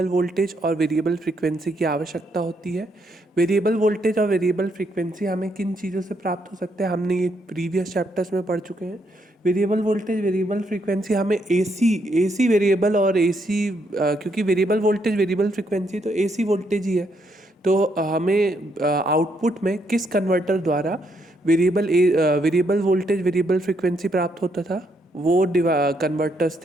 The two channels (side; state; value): both; normal; correlation 0.75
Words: वोल्टेज और वेरिएबल फ्रीक्वेंसी की आवश्यकता होती है। वेरिएबल वोल्टेज और वेरिएबल फ्रीक्वेंसी हमें किन चीज़ों से प्राप्त हो सकते हैं, हमने ये प्रीवियस चैप्टर्स में पढ़ चुके हैं। वेरिएबल वोल्टेज वेरिएबल फ्रीक्वेंसी हमें एसी वेरिएबल और एसी, क्योंकि वेरिएबल वोल्टेज वेरिएबल फ्रीक्वेंसी तो एसी वोल्टेज ही है, तो हमें आउटपुट में किस कन्वर्टर द्वारा वेरिएबल वोल्टेज वेरिएबल फ्रीक्वेंसी प्राप्त होता था, वो कन्वर्टर्स